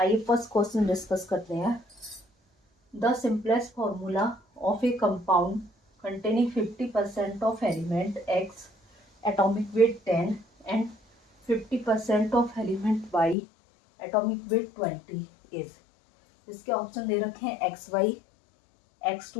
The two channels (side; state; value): right; drops out; at 13.4 s